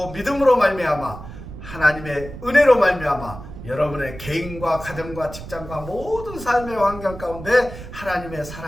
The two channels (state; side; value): noise; right; rumble, 13 dB below the sound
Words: 믿음으로 말미암아 하나님의 은혜로 말미암아 여러분의 개인과 가정과 직장과 모든 삶의 환경 가운데 하나님의